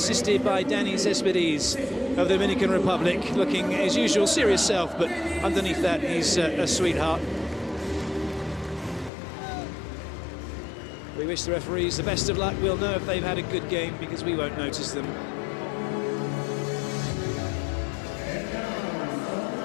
by Danny Cespedes of the Dominican Republic, looking his usual serious self, but underneath that he's a sweetheart. We wish the referees the best of luck. We'll know if they've had a good game because we won't notice them.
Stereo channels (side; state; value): right; drops out; at 9.1 s